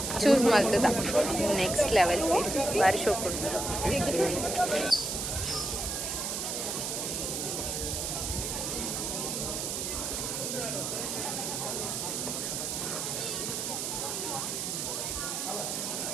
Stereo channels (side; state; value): right; noise; hiss, 2 dB below the sound